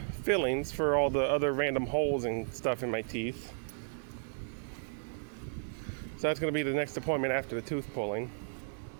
fillings for all the other random holes and stuff in my teeth. So that's going to be the next appointment after the tooth pulling.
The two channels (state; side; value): silent; left; digital silence